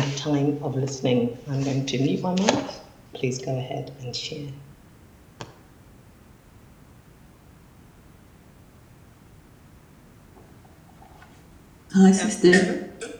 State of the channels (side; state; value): both; identical; correlation 1.00